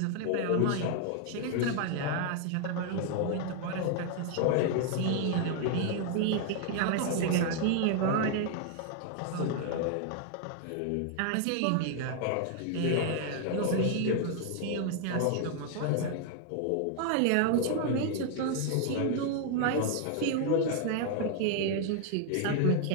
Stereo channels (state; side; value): different; both; correlation 0.00